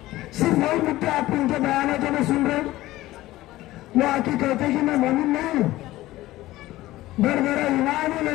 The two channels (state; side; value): quieter; right; 16.7 dB